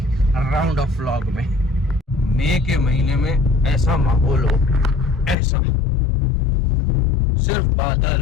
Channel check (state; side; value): drops out; right; at 5.4 s